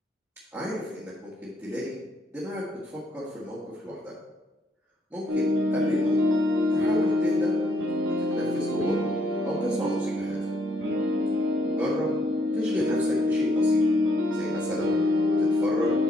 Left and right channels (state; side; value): normal; both; correlation 0.71